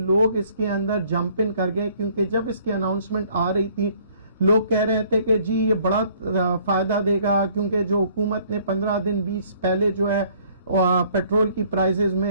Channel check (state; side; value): inverted; both; correlation -0.59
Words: اس کے اندر جمپ ان کر گئے، کیونکہ جب اس کی اناؤنسمنٹ آ رہی تھی لوگ کہہ رہے تھے کہ جی یہ بڑا فائدہ دے گا، کیونکہ جو حکومت نے 15 دن 20 پہلے جو ہے پیٹرول کی پرائسز